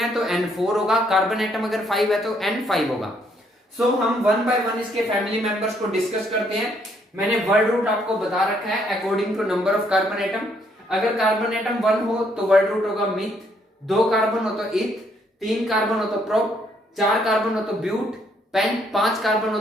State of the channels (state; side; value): normal; both; correlation 0.70